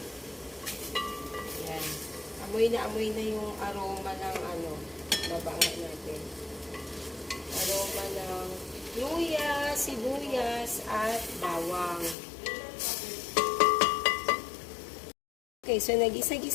Yan. Amoy na yung aroma ng babanga natin. Aroma ng luya, sibuyas, at bawang. Okay, so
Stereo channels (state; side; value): drops out; right; at 12.2 s